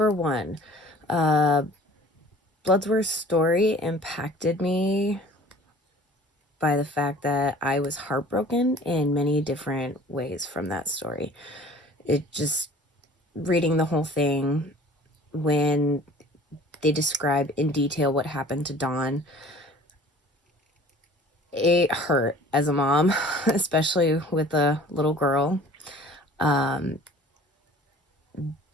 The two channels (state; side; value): normal; both; correlation 0.48